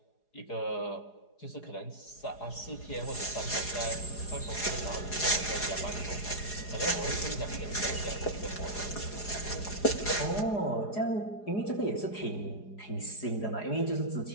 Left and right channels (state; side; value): late; right; 4.8 ms